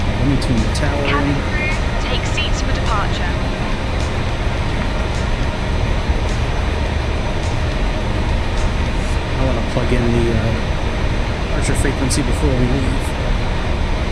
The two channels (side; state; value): both; identical; correlation 1.00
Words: Let me tune the tower Cabin in. crew, take seats for departure. I want to plug in the departure frequency before we leave.